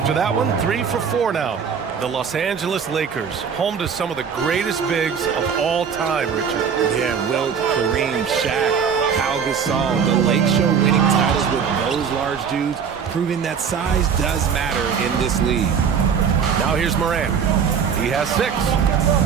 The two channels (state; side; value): quieter; left; 6.9 dB